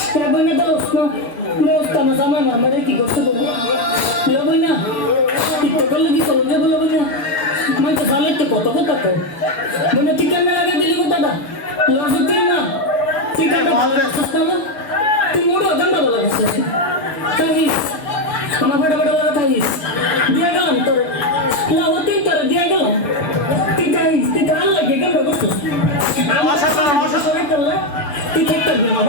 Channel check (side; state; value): right; late; 6.9 ms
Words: কেবল না দোস্ত দোস্ত আমার জামাই না আমারে কি করতে বলবো লবো না তো করলে কি চলে যাবো লবো না মানে তো জালে তো কত কথা কো মানে ঠিক না লাগা দিলি কথাটা লজিক না ঠিক আছে তুই মোড় দন্ডা বলা বসে তাইস আমার বড় বড় কথা তাইস দিয়া গেলাম তোর লাউতিন তোর দিয়া গেলাম তুই তাইস তুই কাল লাগে কেন বসছিস আমার সাথে সরে করলে তুই ঠিক করবি না